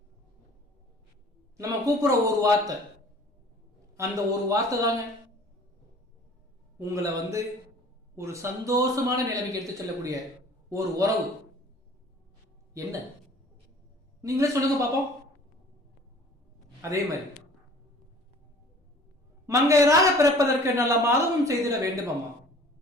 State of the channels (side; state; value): both; normal; correlation 0.49